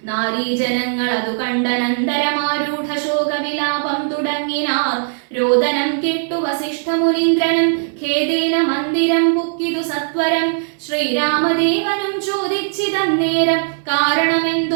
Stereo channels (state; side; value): silent; left; 58 dB below the other